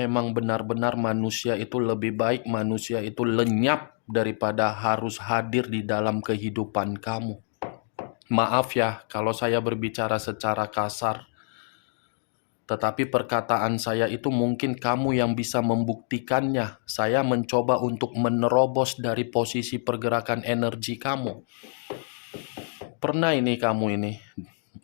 benar-benar manusia itu lebih baik, manusia itu lenyap daripada harus hadir di dalam kehidupan kamu. Maaf ya kalau saya berbicara secara kasar, tetapi perkataan saya itu mungkin kamu yang bisa membuktikannya. Saya mencoba untuk menerobos dari posisi pergerakan energi kamu. Pernah ini kamu ini,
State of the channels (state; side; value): silent; right; digital silence